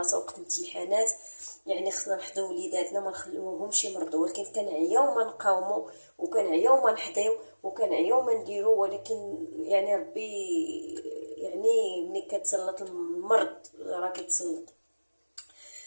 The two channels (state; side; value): inverted; both; correlation -1.00